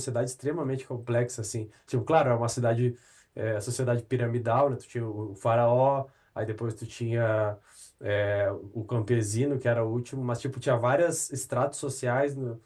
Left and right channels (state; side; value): identical; both; correlation 1.00